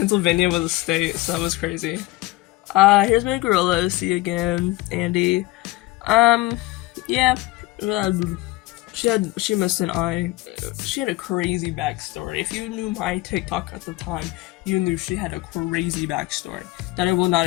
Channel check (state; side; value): quieter; right; 19.4 dB